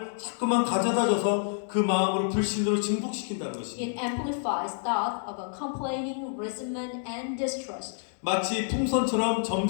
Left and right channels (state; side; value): silent; right; digital silence